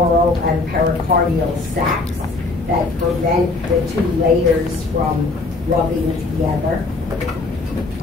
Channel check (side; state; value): right; quieter; 3.4 dB